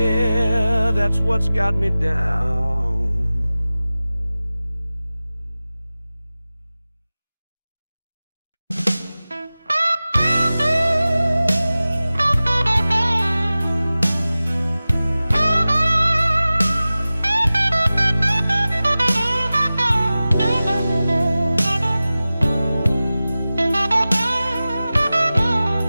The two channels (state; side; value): inverted; both; correlation -0.97